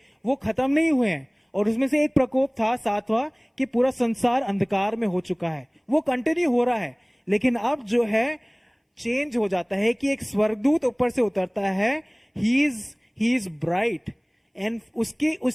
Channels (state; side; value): identical; both; correlation 1.00